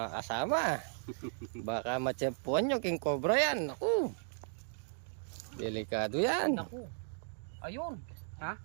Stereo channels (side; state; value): left; silent; digital silence